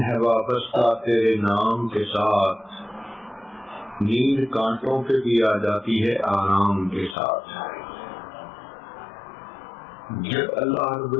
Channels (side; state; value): right; drops out; at 7.2 s